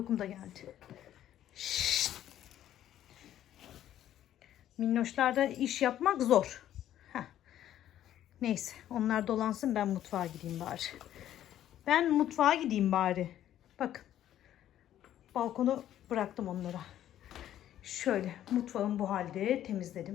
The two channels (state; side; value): quieter; right; 11.8 dB